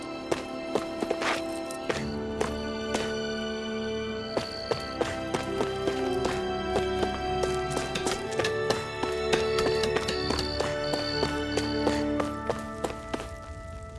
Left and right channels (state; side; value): identical; both; correlation 1.00